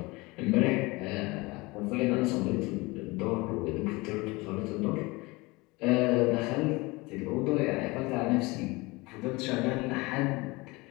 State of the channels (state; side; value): quieter; right; 23.7 dB